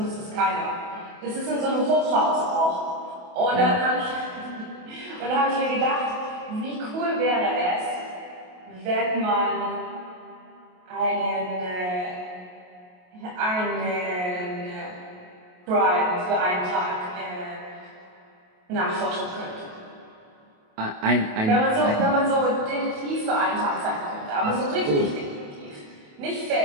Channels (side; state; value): left; late; 28 ms